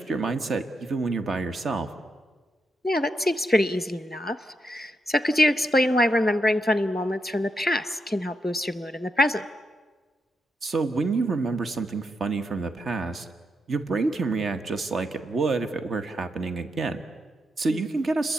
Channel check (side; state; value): both; normal; correlation 0.83